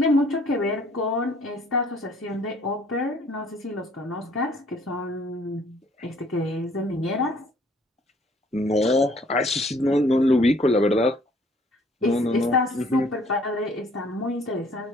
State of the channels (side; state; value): both; normal; correlation 0.59